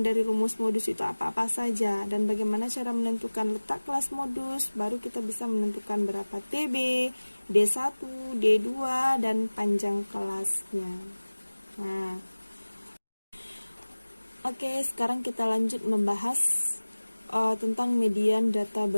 rumus modus itu apa-apa saja dan bagaimana cara menentukan letak kelas modus, baru kita bisa menentukan berapa TB, D1, D2 dan panjang kelasnya. Nah, oke, sekarang kita lanjut membahas tentang median data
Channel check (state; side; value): inverted; both; correlation -1.00